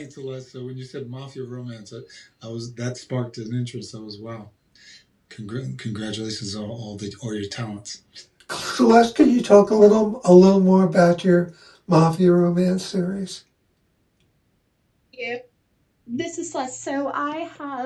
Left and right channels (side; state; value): both; identical; correlation 1.00